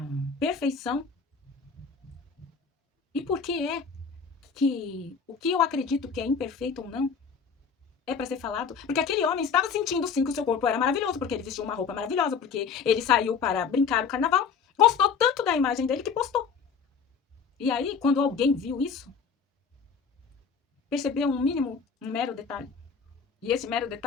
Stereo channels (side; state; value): right; quieter; 6.0 dB